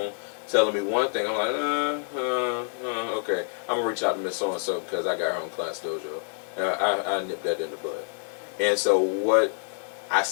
telling me one thing, I'm like, okay, I'm gonna reach out to Miss So and So because I got her on Class Dojo. I nipped that in the bud. And so I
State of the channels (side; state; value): right; silent; digital silence